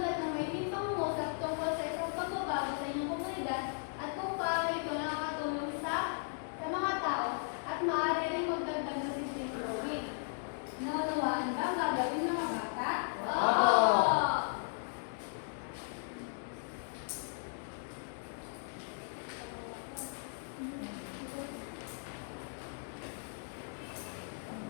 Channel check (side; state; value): right; silent; digital silence